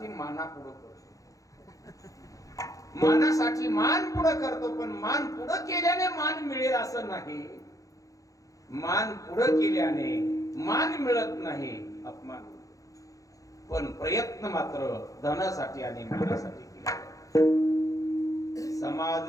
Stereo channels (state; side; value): late; right; 0.16 ms